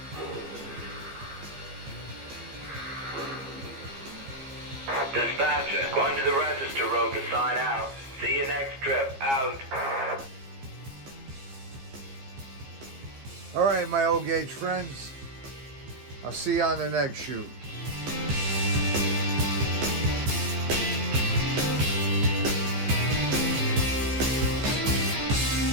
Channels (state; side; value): late; left; 15 ms